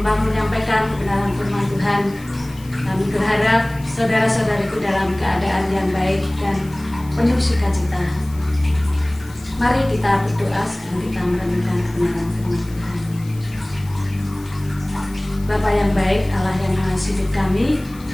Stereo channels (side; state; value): left; noise; hiss, 22 dB below the sound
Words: kebenaran firman Tuhan. Kami berharap saudara-saudariku dalam keadaan yang baik dan penuh sukacita. Mari kita berdoa sebelum kita merenungkan kebenaran firman Tuhan. Bapa yang baik, Allah yang mengasihi hidup